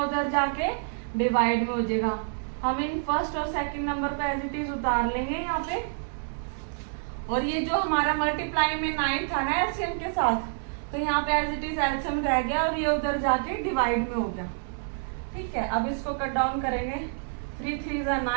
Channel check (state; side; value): silent; left; digital silence